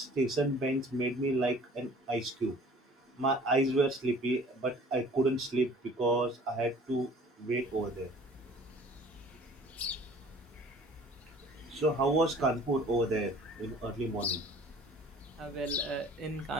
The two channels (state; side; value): normal; both; correlation 0.50